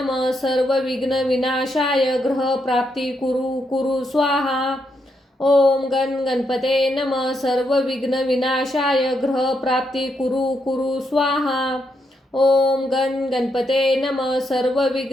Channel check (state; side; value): normal; both; correlation 0.80